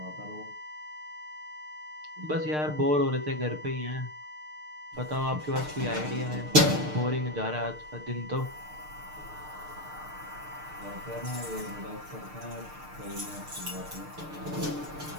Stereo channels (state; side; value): late; left; 6.6 ms